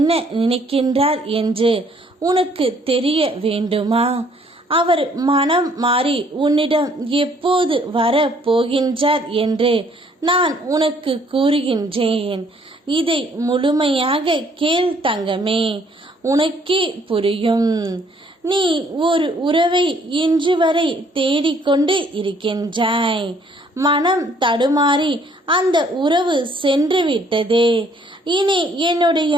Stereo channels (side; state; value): both; normal; correlation 0.63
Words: நினைக்கின்றார் என்று உனக்கு தெரிய வேண்டுமா? அவர் மனம் மாறி உன்னிடம் எப்போது வர போகின்றார் என்று நான் உனக்கு கூறுகின்றேன். இதை முழுமையாக கேள் தங்கமே, உனக்கே புரியும். நீ ஒரு உறவை இன்று வரை தேடிக்கொண்டு இருக்கின்றாய். மனம் தடுமாறி அந்த உறவு சென்று விட்டதே. இனி